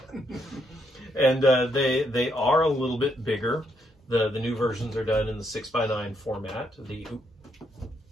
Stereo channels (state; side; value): normal; both; correlation 0.76